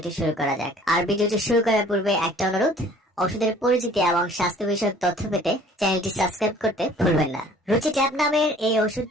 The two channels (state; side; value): normal; both; correlation 0.52